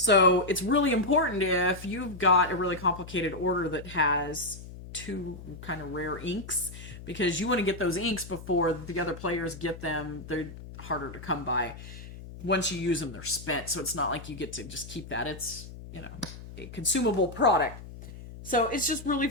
it's really important if you've got a really complicated order that has 2 kind of rare inks, because you want to get those inks before the other players get them. They're harder to come by. Once you use them, they're spent. So it's not like you get to just keep that. It's, a consumable product. So it's just really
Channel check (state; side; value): noise; left; hum, 14 dB below the sound